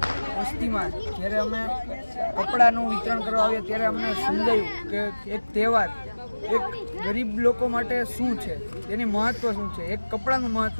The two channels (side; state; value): both; inverted; correlation -1.00